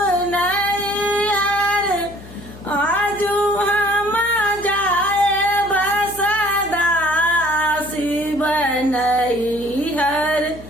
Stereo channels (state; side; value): noise; left; hum, 17 dB below the sound